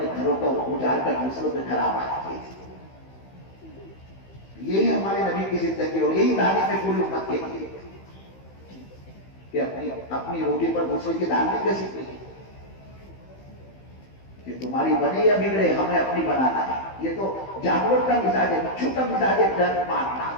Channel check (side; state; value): right; late; 15 ms